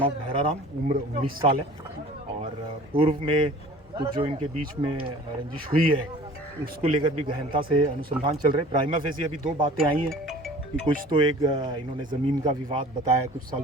ऑफ भैराराम, उम्र 19 साल है और पूर्व में कुछ जो इनके बीच में रंजिश हुई है उसको लेकर भी गहनता से अनुसंधान चल रहे हैं। प्राइमा फेसी अभी दो बातें आई हैं कि कुछ तो एक इन्होंने ज़मीन का विवाद बताया कुछ साल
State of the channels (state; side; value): normal; both; correlation 0.45